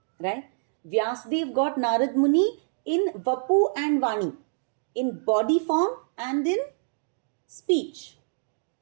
Right? Vyasdev got Narad Muni in Vapu and Vani, in body form and in speech.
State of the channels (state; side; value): silent; left; digital silence